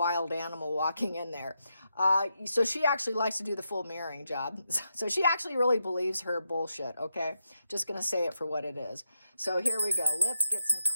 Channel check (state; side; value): inverted; both; correlation -0.84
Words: animal walking in there. So she actually likes to do the full mirroring job. So she actually really believes her bullshit, okay? Just going to say it for what it is. So here we go. Let's get some